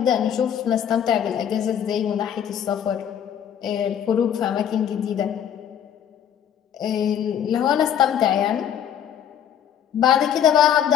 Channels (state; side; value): quieter; right; 9.4 dB